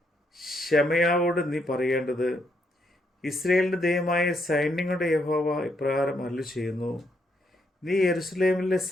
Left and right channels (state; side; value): normal; both; correlation 0.76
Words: ശമയാവോട് നീ പറയേണ്ടത്, ഇസ്രയേലിൻ്റെ ദൈവമായ സൈന്യങ്ങളുടെ യഹോവ ഇപ്രകാരം അരുളി ചെയ്യുന്നു. നീ യെരൂശലേമിലെ